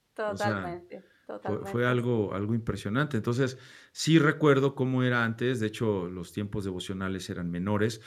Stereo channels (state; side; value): identical; both; correlation 1.00